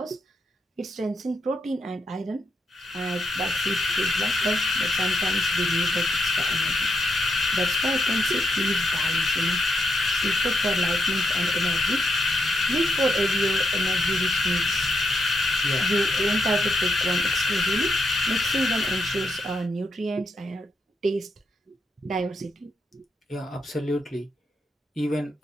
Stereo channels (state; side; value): normal; both; correlation 0.80